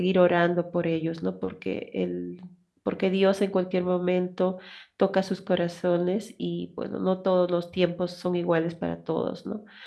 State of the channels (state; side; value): identical; both; correlation 1.00